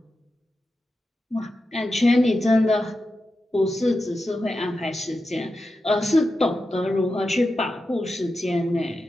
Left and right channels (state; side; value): normal; both; correlation 0.90